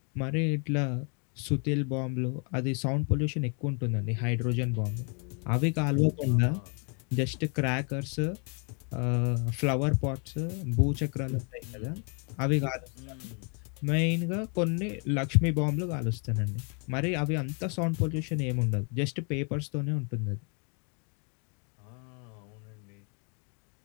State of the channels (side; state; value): right; quieter; 37.7 dB